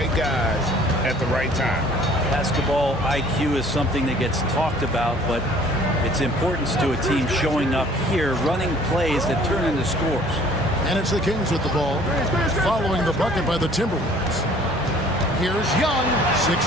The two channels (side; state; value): both; normal; correlation 0.54